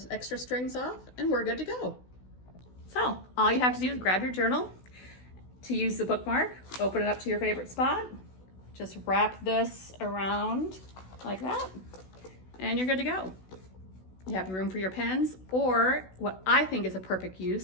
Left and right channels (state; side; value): late; right; 16 ms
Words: extra strings off, and we're good to go. So all you have to do is grab your journal. To use the bookmark, open it up to your favorite spot. Just wrap this around like that, and you're good to go. You have room for your pens, or what I think is a perfect